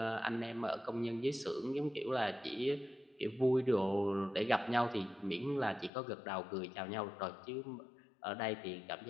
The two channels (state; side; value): drops out; right; at 5.9 s